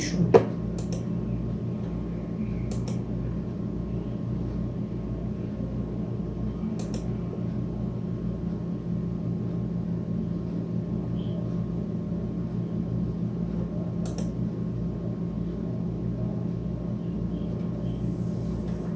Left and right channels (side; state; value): both; identical; correlation 1.00